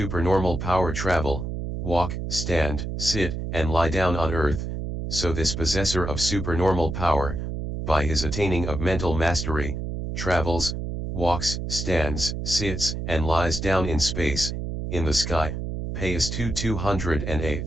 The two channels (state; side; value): noise; right; hum, 4 dB below the sound